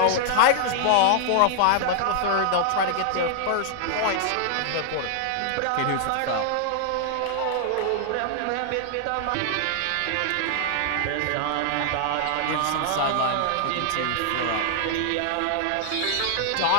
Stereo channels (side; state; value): both; different; correlation 0.00